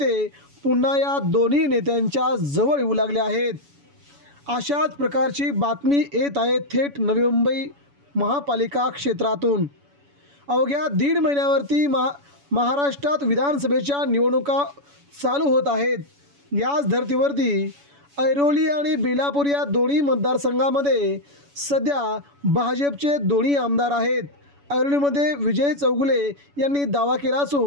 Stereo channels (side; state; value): left; late; 7.0 ms